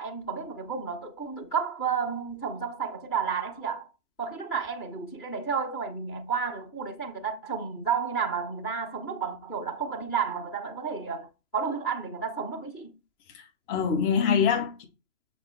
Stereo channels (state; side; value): late; right; 3.0 ms